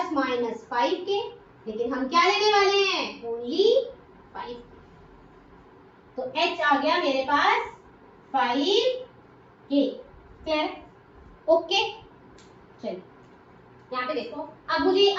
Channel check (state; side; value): identical; both; correlation 1.00